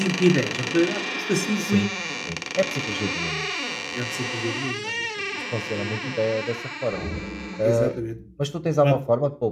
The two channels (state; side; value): identical; both; correlation 1.00